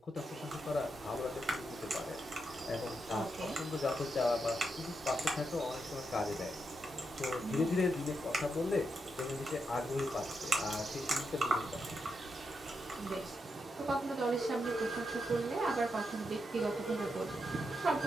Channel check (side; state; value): both; normal; correlation 0.83